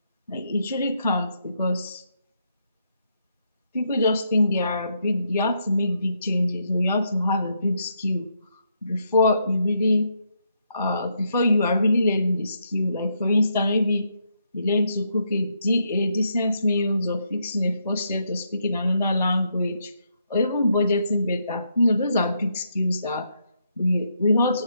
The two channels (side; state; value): both; inverted; correlation -0.78